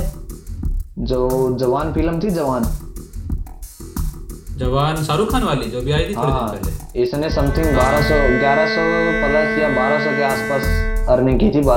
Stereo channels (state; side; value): identical; both; correlation 1.00